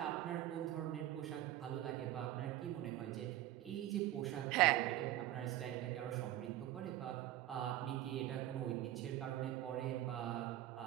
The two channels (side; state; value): left; quieter; 14.0 dB